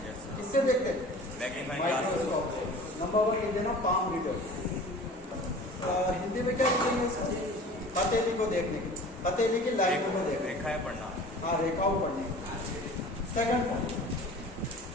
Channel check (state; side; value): normal; both; correlation 0.42